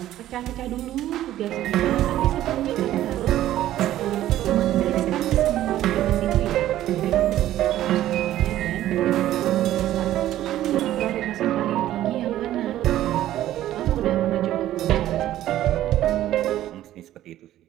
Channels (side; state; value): left; quieter; 13.3 dB